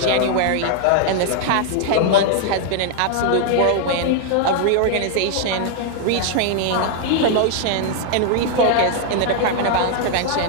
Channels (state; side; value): different; both; correlation -0.01